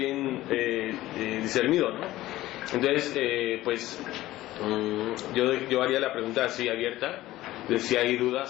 discernido, ¿no? Entonces, pues yo haría la pregunta así abierta, de si hay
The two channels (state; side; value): quieter; right; 16.1 dB